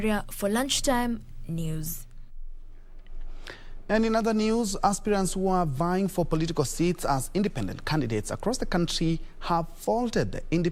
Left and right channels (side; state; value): both; identical; correlation 1.00